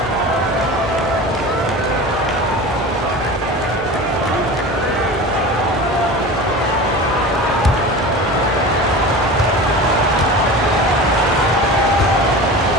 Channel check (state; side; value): normal; both; correlation 0.33